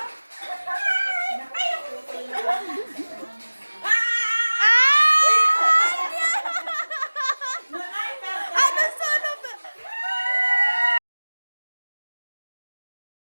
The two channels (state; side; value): inverted; both; correlation -1.00